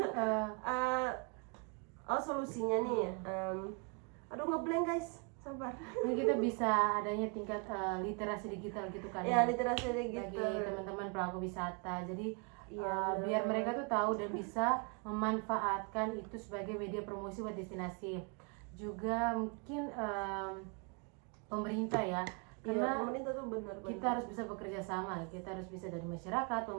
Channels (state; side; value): quieter; left; 33.8 dB